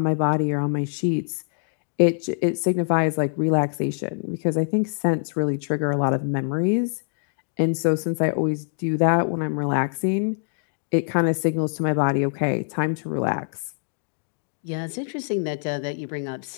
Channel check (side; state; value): right; silent; digital silence